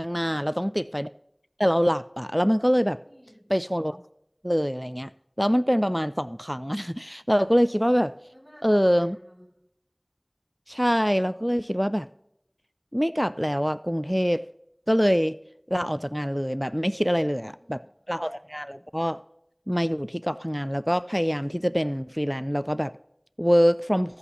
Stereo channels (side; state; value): both; identical; correlation 1.00